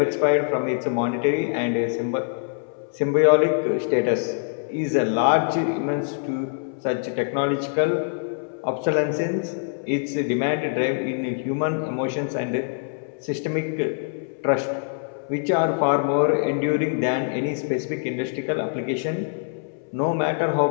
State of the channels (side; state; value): right; silent; 62 dB below the other